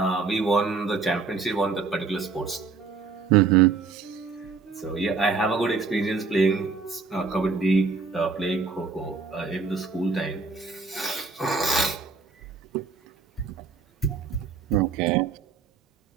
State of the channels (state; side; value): quieter; left; 4.8 dB